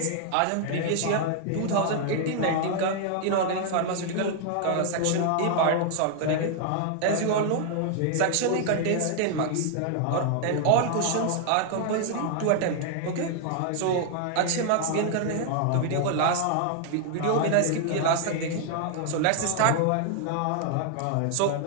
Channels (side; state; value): both; different; correlation 0.00